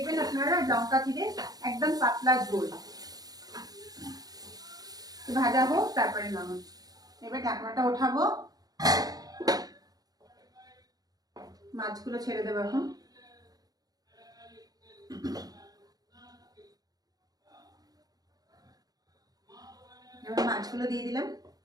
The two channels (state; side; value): late; left; 0.18 ms